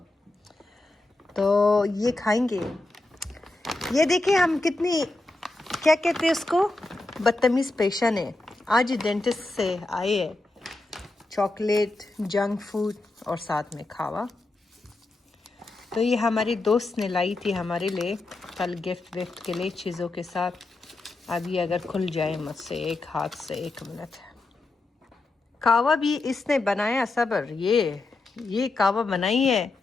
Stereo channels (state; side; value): quieter; right; 3.0 dB